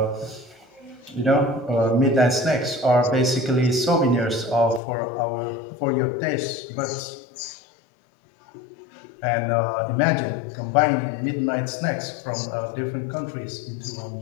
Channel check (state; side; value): drops out; right; at 4.8 s